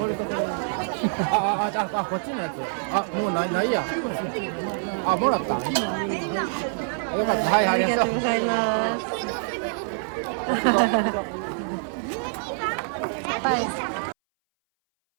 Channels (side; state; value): left; silent; 59 dB below the other